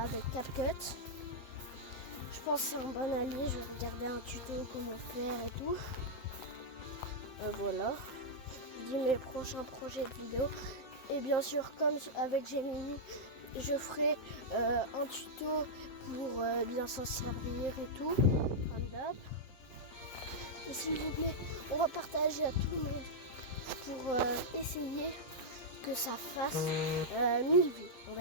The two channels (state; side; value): late; right; 7.7 ms